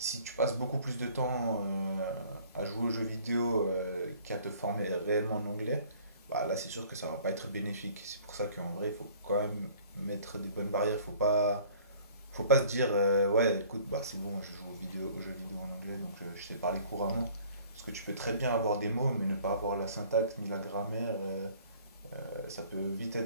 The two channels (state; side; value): inverted; both; correlation -0.53